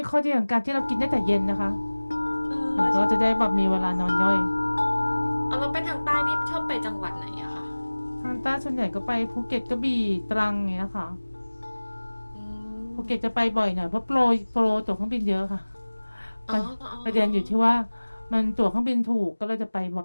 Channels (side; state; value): both; inverted; correlation -1.00